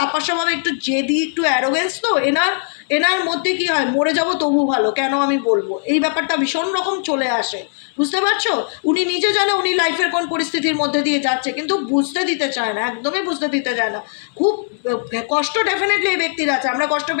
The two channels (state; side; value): silent; right; 64 dB below the other